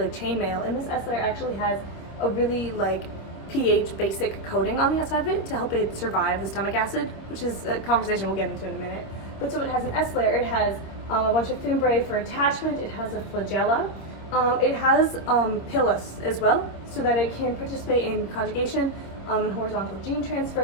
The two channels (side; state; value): right; late; 26 ms